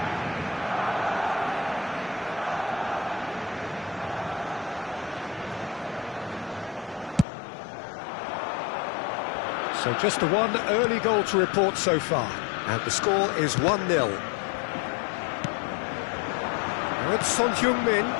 So just the one early goal to report so far. And the score is 1-0. Now it's Son Heung-min.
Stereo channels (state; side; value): drops out; right; at 7.2 s